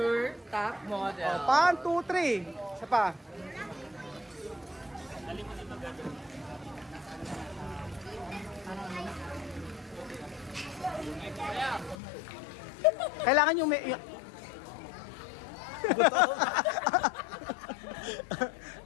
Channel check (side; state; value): right; drops out; at 12.0 s